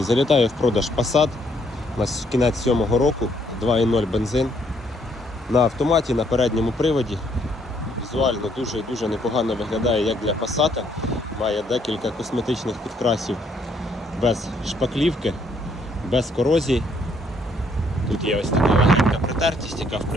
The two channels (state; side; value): normal; both; correlation 0.69